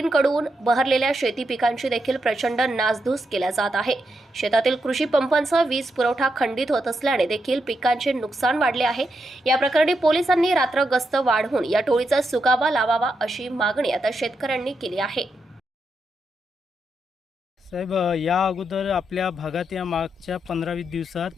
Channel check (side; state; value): both; normal; correlation 0.83